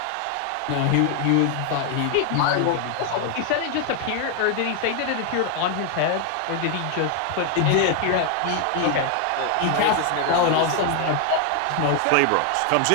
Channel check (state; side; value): different; both; correlation 0.00